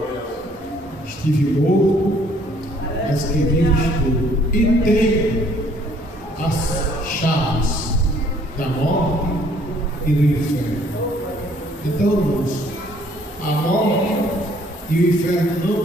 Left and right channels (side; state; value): both; normal; correlation 0.61